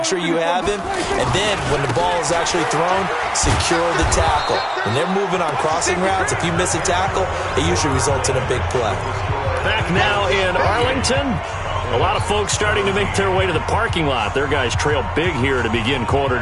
sure you have him. And then when the ball is actually thrown, secure the tackle. When they're moving on crossing routes, if you miss a tackle, it usually results in a big play. Back now in Arlington. A lot of folks starting to make their way to the parking lot. Their guys trail big here to begin quarter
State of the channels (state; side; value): identical; both; correlation 1.00